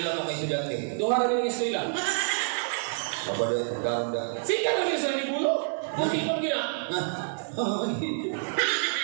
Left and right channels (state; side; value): silent; left; digital silence